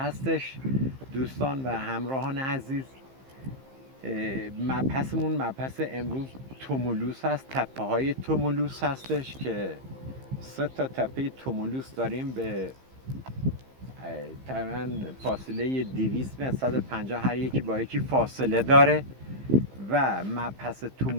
دوستان و همراهان عزیز. مبحثمون مبحث امروز تومولوس هست، تپه های تومولوس هستش که 3 تا تپه تومولوس داریم به تقریباً فاصله 200 متر 150 هر یکی با یکی فاصله داره و مبحث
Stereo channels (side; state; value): left; late; 15 ms